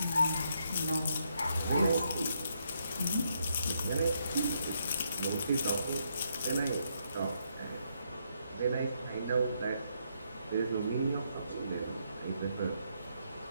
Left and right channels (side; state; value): both; inverted; correlation -0.76